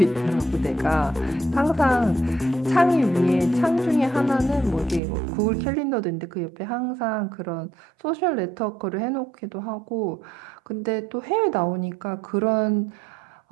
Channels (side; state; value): left; drops out; at 5.0 s